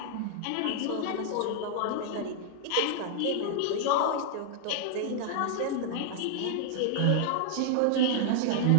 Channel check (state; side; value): different; both; correlation -0.01